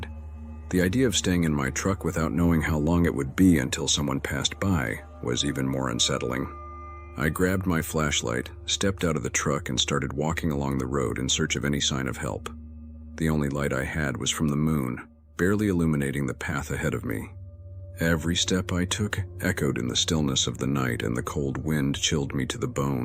the idea of staying in my truck without knowing how long it would be until someone passed by was even more unsettling. I grabbed my flashlight, stepped out of the truck, and started walking along the road in search of any sign of help. The only light I had was from the moon, barely illuminating the path ahead of me. Every step I took echoed in the stillness of the night, and the cold wind chilled me to the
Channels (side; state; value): both; identical; correlation 1.00